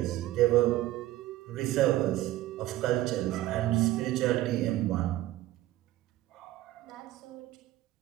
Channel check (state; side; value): quieter; left; 15.6 dB